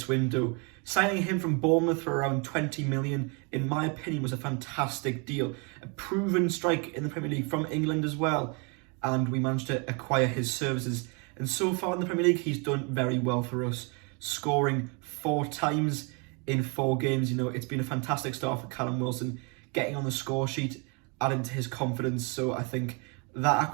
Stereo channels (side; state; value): left; quieter; 33.5 dB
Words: window. Signing him from Bournemouth for around 20 million, in my opinion, was a fantastic deal. A proven strike in the Premier League from England as well, and we managed to acquire his services. And so far in the Premier League, he's done very well for us, scoring 4 times in 4 games. You know, it's been a fantastic start for Callum Wilson, getting on the score sheet, adding to his confidence. So I think that